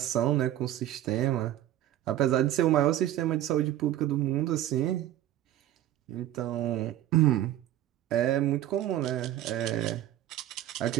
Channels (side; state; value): left; quieter; 13.0 dB